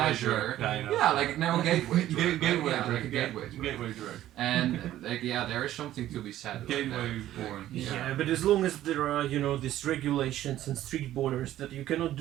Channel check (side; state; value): left; quieter; 13.4 dB